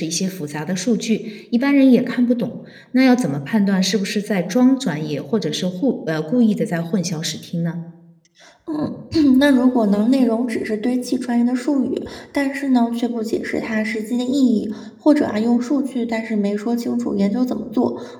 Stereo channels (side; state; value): both; identical; correlation 1.00